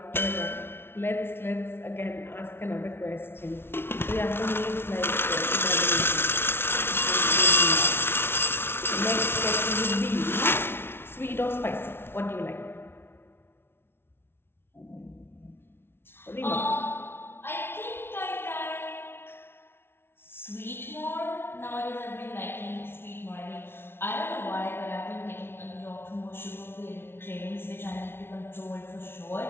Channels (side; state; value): right; late; 0.11 ms